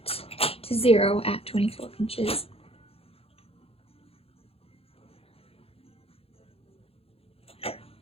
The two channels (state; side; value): late; right; 0.28 ms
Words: to 0 at 24 inches.